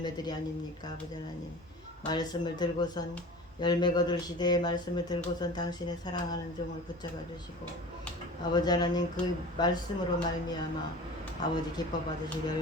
아닙니까? 아버지 하나님, 말씀을 들고선 열매 거둘 시대의 말씀을 들고선 당신의 사랑하는 종을 붙잡아 주시고 아버지 하나님 그 말씀으로 말미암아 아버지 기뻐 받으실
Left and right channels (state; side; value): normal; both; correlation 0.37